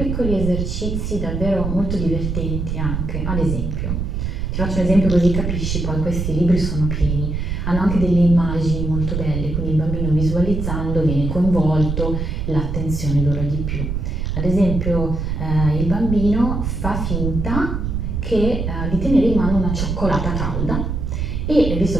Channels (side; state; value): right; noise; rumble, 2 dB below the sound